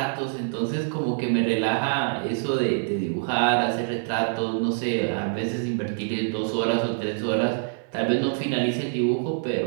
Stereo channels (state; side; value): silent; left; digital silence